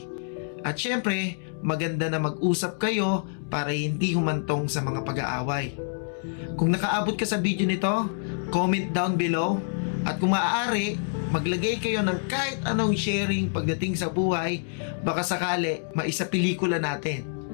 At syempre, maganda na mag-usap kayo para hindi humantong sa mga pag-aaway. Kung nakaabot ka sa video nito, comment down below. At kung maaari, maglagay kayo ng kahit anong sharing pagdating sa buhay, baka sakali maisa pelikula natin.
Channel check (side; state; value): right; silent; digital silence